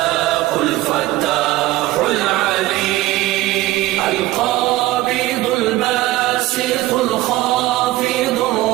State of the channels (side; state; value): left; quieter; 17.0 dB